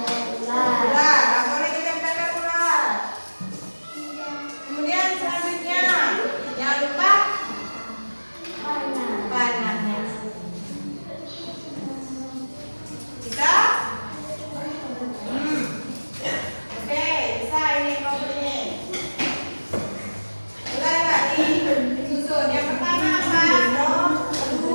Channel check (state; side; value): inverted; both; correlation -1.00